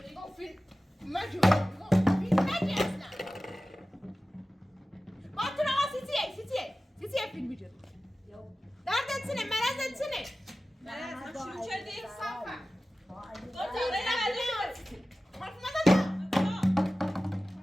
نگاه فیلم مجور فیلم مجی اصلا با تو نگاه سیتیه فیلم بجری دردت سنه مرزت سنه مرز شروع کردی صافه گفت حرف مزن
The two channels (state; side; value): normal; both; correlation 0.96